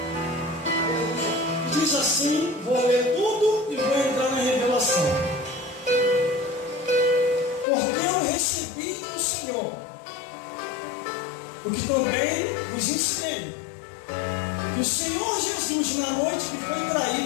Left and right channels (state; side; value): drops out; right; at 7.7 s